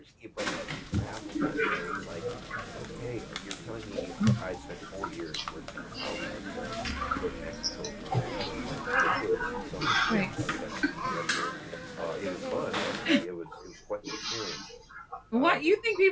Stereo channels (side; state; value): both; identical; correlation 1.00